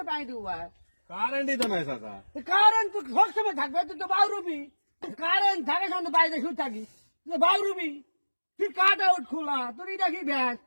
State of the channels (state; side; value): inverted; both; correlation -1.00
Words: পানি দিব ভাই কারেন্টই তো নাই চাচা কারেন্ট তো সবসময় থাকবে তুই তো বাউরুবি কারেন্ট থাকে সঙ্গে বাইরে শুয়ে থাকি বাউরুবি তুই কাট আউট খোলা তোর এটা কি ব্যাস